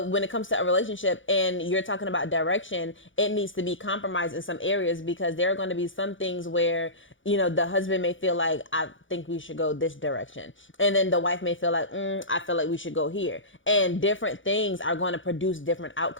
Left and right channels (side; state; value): right; late; 0.56 ms